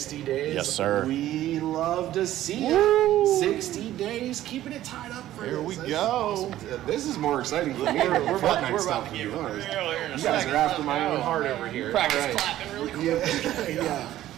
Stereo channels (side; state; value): left; quieter; 13.6 dB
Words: days? Yes, sir. We love to see it. 60 days, keeping it tied up for Here this. we This go. is awesome. This is more exciting for me than Fortnite stuff, to be honest. You guys are after my own heart over here. Practice clapping really quick. Yeah,